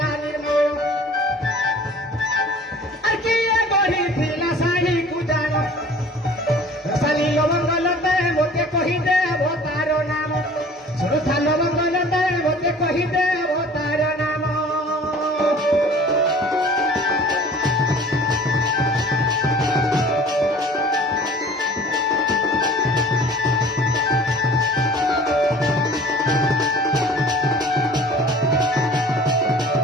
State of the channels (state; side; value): normal; both; correlation 0.47